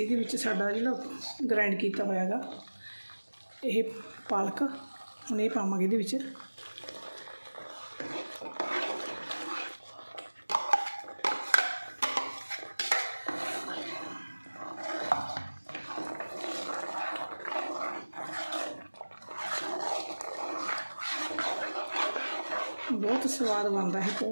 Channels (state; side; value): inverted; both; correlation -1.00